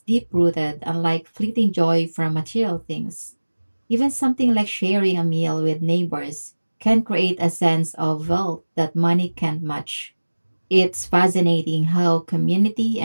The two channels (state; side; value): inverted; both; correlation -1.00